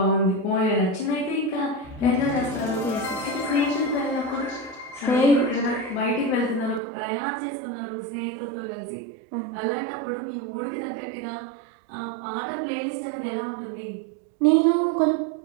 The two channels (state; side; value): drops out; left; at 6.8 s